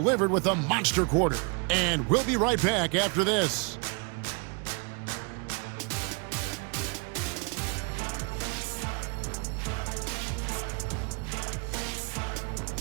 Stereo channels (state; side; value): quieter; left; 33.9 dB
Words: with a monster quarter. And we'll be right back after this.